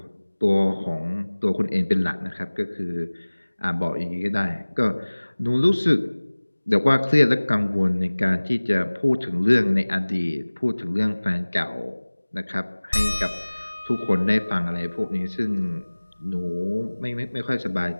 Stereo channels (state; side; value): inverted; both; correlation -1.00